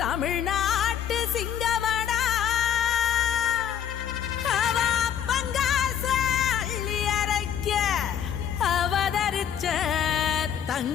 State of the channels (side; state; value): right; quieter; 9.2 dB